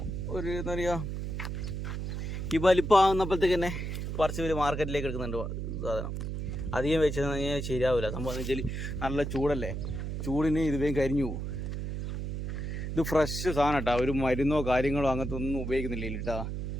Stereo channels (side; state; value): right; noise; hum, 4 dB below the sound